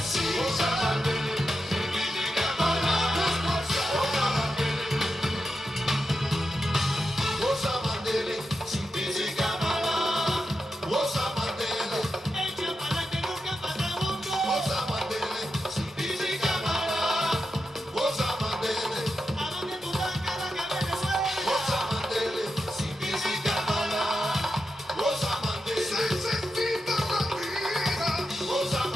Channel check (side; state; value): both; normal; correlation 0.88